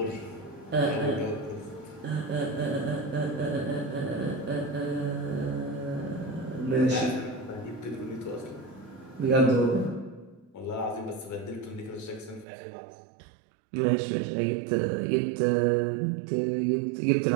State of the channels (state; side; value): drops out; left; at 12.5 s